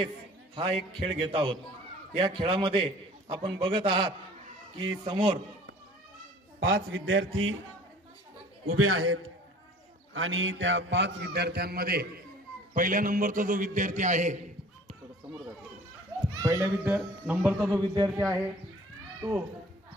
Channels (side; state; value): both; normal; correlation 0.49